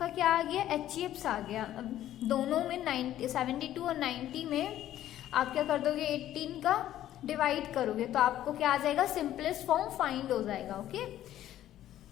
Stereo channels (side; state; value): right; quieter; 12.6 dB